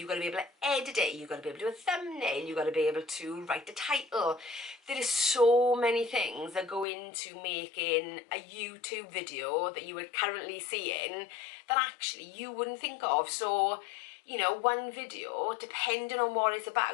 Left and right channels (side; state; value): right; drops out; at 6.9 s